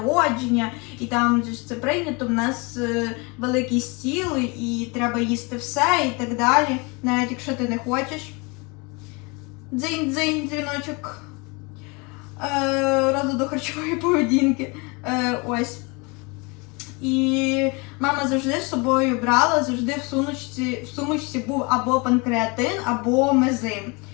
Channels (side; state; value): right; quieter; 28.9 dB